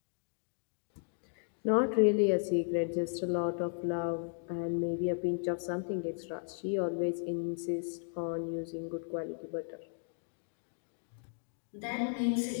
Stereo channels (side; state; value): right; silent; digital silence